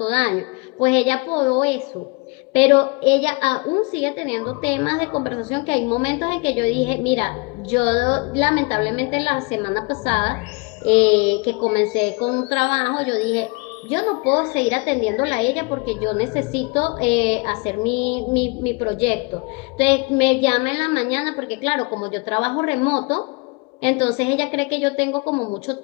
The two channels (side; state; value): right; quieter; 30.0 dB